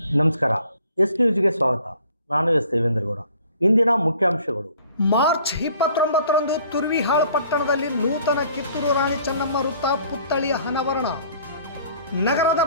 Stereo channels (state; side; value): inverted; both; correlation -0.55